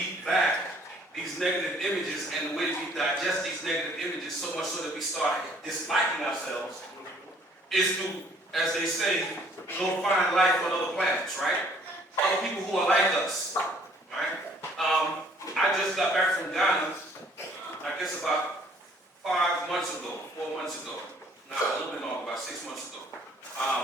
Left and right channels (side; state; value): both; normal; correlation 0.59